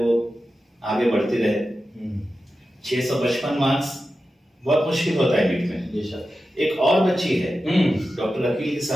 आगे बढ़ती रहे। 655 मार्क्स बहुत मुश्किल होता है नीट में। एक और बच्ची है डॉक्टर अकील की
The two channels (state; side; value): normal; both; correlation 0.92